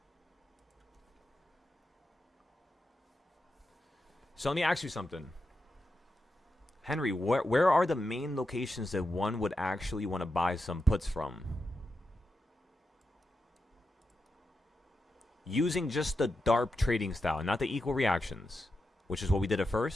So let me ask you something. Henry, where are the main locations that one would actually want to buy some puts from? using just the Darp trading style, not the equal reactions, which is what we did at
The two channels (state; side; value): normal; both; correlation 0.88